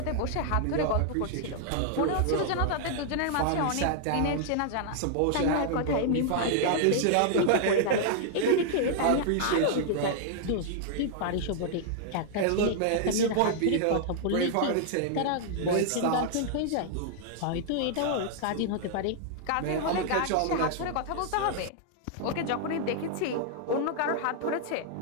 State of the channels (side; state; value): both; different; correlation -0.01